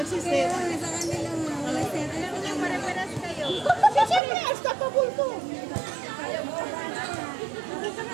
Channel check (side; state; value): left; drops out; at 4.2 s